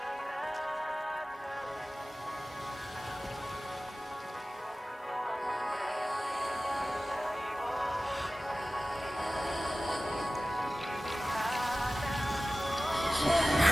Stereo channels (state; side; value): normal; both; correlation 0.97